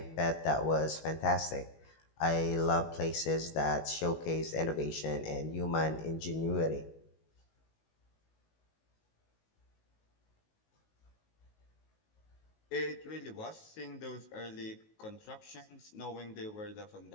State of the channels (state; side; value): late; right; 19 ms